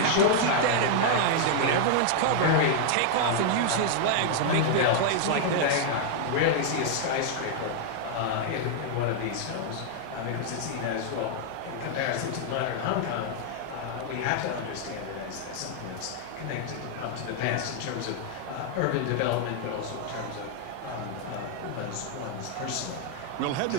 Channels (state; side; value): different; both; correlation -0.01